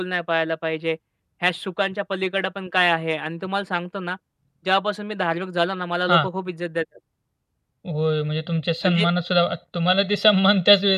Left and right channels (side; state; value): both; identical; correlation 1.00